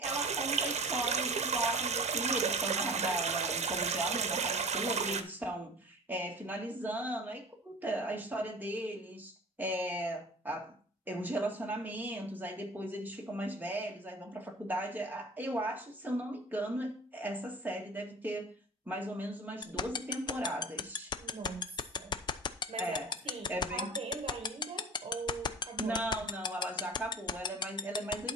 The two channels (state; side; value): normal; both; correlation 0.39